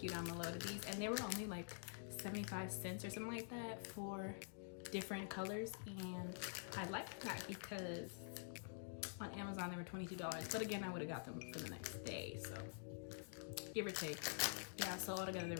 you down below to these. And they were only like 75 cents or something like that for different colors, and I like that because on Amazon they were $22, but again I would have got them for the next day, so give or take. Yeah, so altogether there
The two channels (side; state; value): right; silent; digital silence